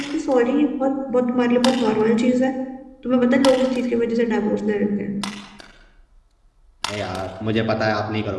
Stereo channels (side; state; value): both; identical; correlation 1.00